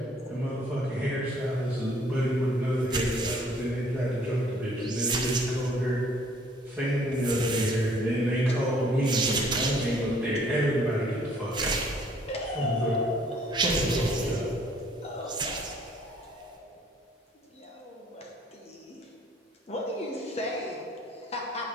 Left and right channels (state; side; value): normal; both; correlation 0.60